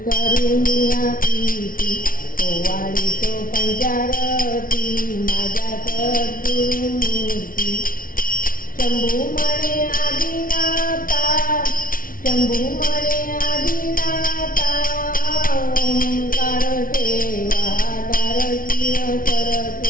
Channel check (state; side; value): late; right; 0.41 ms